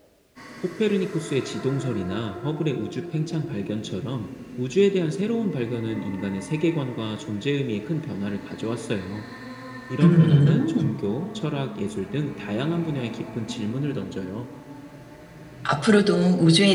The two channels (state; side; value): identical; both; correlation 1.00